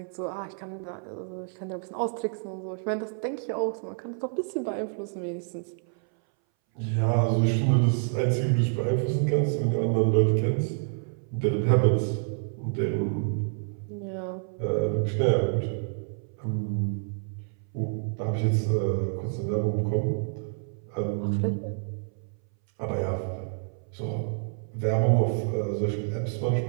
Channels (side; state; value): left; silent; 59 dB below the other